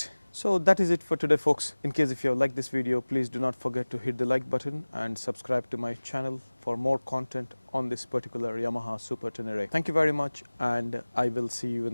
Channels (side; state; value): both; inverted; correlation -1.00